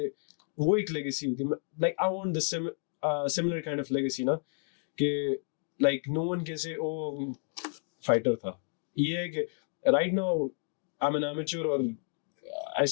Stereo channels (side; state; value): right; silent; 57 dB below the other